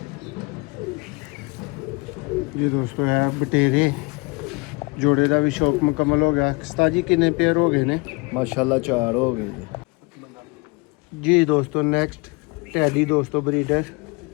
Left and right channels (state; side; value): quieter; right; 27.8 dB